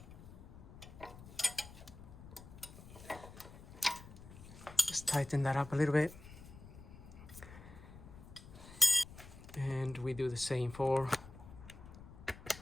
Just tighten that up a little bit. And we do the same for the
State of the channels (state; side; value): noise; left; rumble, 16 dB below the sound